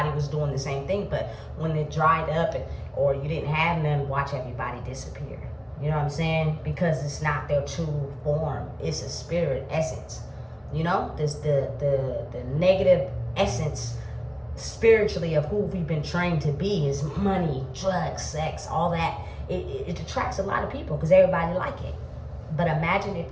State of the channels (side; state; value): both; identical; correlation 1.00